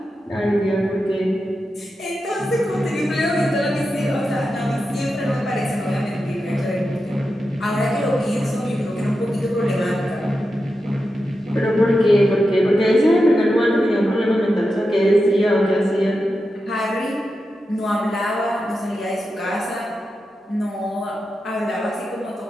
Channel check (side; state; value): both; normal; correlation 0.90